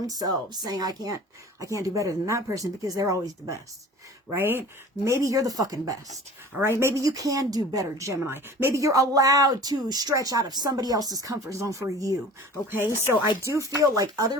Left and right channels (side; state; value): both; normal; correlation 0.42